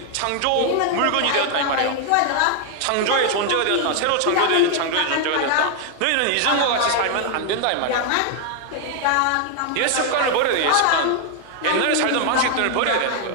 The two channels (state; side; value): different; both; correlation 0.00